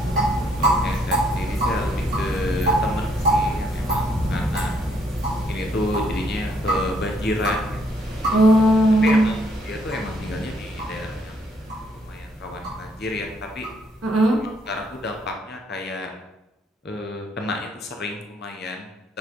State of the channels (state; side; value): normal; both; correlation 0.69